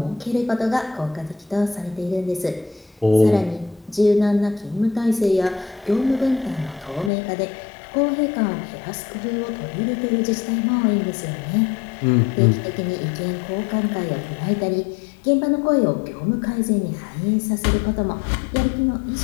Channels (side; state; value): right; drops out; at 7.1 s